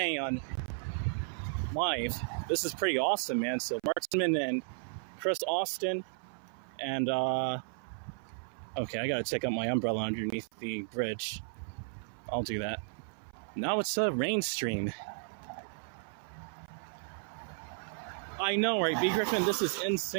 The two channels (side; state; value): left; silent; 55 dB below the other